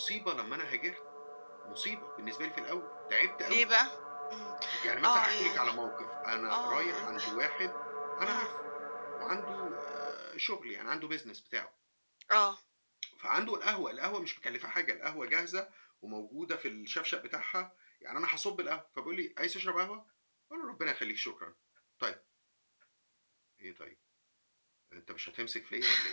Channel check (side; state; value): both; inverted; correlation -1.00